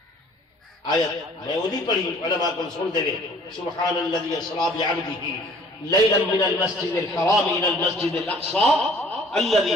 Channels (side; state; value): both; normal; correlation 0.53